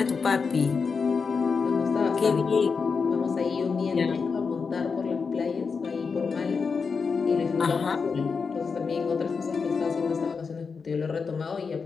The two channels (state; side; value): quieter; right; 5.2 dB